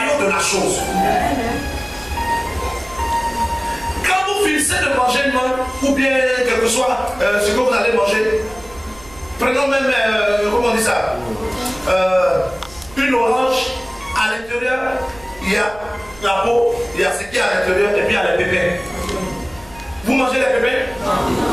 de la chose. Quand vous finissez de manger une mangue, ou bien quel que soit ce que vous allez manger, prenons même, comment on dit ça, une orange, à l'intérieur, il y a la peau, il y a ce qui est à l'intérieur, et puis il y a les pépins. Vous mangez les pépins?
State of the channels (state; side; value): noise; right; rumble, 22 dB below the sound